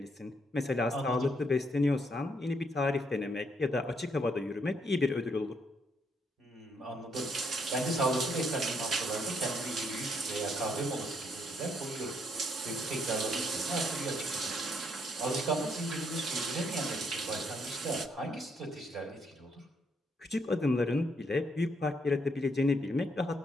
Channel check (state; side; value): normal; both; correlation 0.73